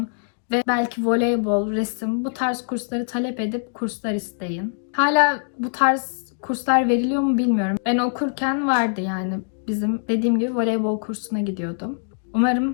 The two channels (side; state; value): right; silent; digital silence